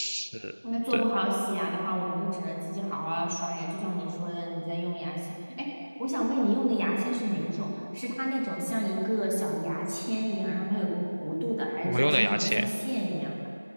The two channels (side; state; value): both; inverted; correlation -1.00